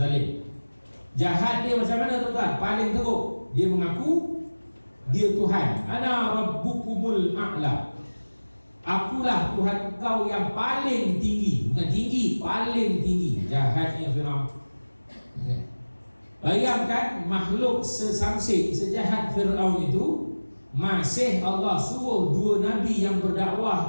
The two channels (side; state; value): both; inverted; correlation -1.00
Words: Jahat dia macam mana tuan-tuan? Paling teruk, dia mengaku dia Tuhan. Ana rabbukumul a'la. Akulah Tuhan kau yang paling tinggi. Bukan tinggi, paling tinggi. Jahatnya Fir'aun. Bayangkan makhluk sesamsik, sejahat Fir'aun itu, masih Allah suruh dua nabi yang